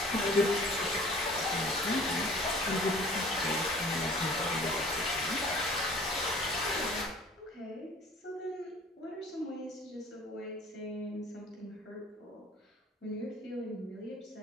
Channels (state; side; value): normal; both; correlation 0.48